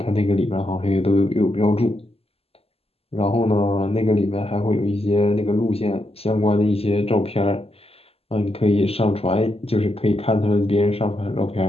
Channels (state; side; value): late; right; 0.29 ms